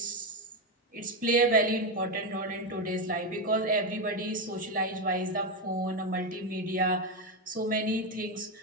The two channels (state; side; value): normal; both; correlation 0.10